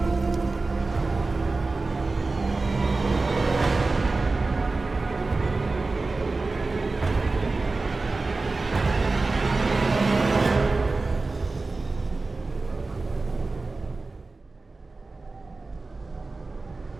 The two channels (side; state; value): left; quieter; 3.6 dB